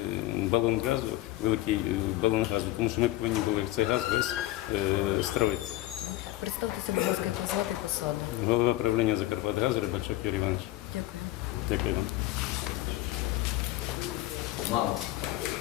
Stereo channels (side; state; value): right; quieter; 16.4 dB